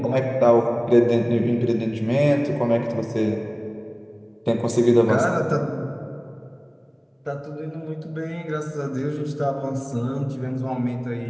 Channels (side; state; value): both; identical; correlation 1.00